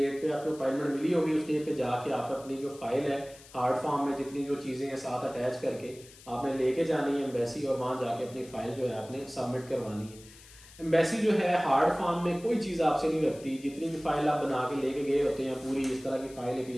पे आपको अपॉइंटमेंट मिली होगी उस डेट पे जाके आप अपनी जो फाइल है हार्ड फॉर्म में जितनी जो चीज़ें हैं साथ अटैच करके आपने लेके जानी है एम्बेसी, और वहाँ जाके अपनी फाइल जो है आपने सबमिट करवानी है। एम्बेसी जो है हार्ड फॉर्म में कोई चीज़ आपसे नहीं रखती। जितनी भी फाइल आप बना के लेके गए होते हैं, पूरी इस तरह की फाइल एक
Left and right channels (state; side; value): noise; left; hiss, 21 dB below the sound